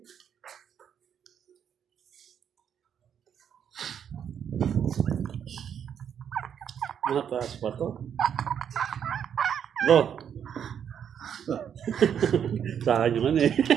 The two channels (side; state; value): left; quieter; 8.4 dB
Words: Mataas pa to. Bro. Sa akin yung ano eh.